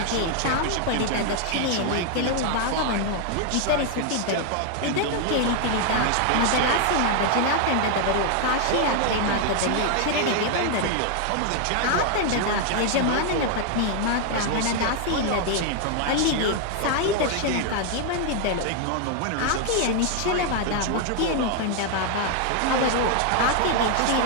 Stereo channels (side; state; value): both; different; correlation 0.00